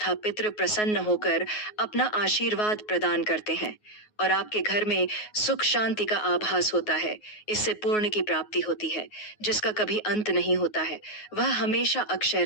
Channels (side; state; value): right; late; 9.5 ms